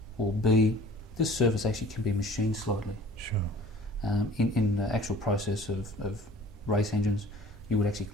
or B, this surface actually can be machined slightly. Sure. In the actual process of race engines, you would actually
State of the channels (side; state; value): both; normal; correlation 0.48